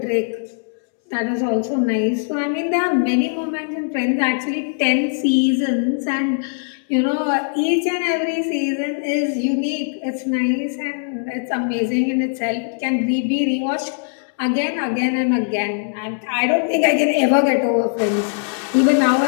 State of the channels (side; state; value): right; silent; 66 dB below the other